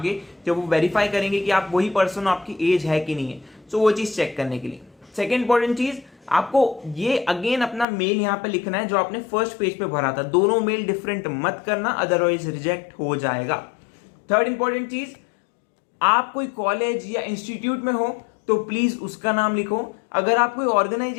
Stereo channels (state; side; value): drops out; right; at 7.9 s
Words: जब वो वेरीफाई करेंगे कि आप वही पर्सन हो, आपकी एज है कि नहीं है, सो वो चीज चेक करने के लिए। सेकेंड इंपॉर्टेंट चीज, आपको ये अगेन अपना मेल यहाँ पे लिखना है जो आपने फर्स्ट पेज पे भरा था। दोनों मेल डिफरेंट मत करना, अदरवाइज रिजेक्ट हो जाएगा। थर्ड इंपॉर्टेंट चीज, आप कोई कॉलेज या इंस्टीट्यूट में हो तो प्लीज उसका नाम लिखो। अगर आप कोई